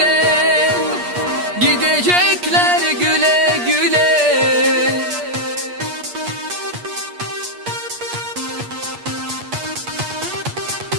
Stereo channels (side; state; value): left; late; 8.4 ms